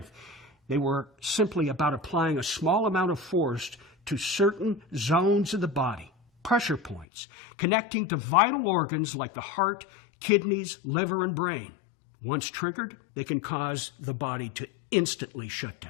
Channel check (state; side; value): drops out; right; at 7.1 s